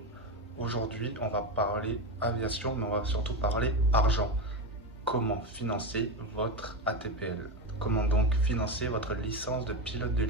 Aujourd'hui, on va parler aviation, mais on va surtout parler argent. Comment financer votre ATPL? Comment donc financer votre licence de pilote de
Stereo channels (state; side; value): normal; both; correlation 0.16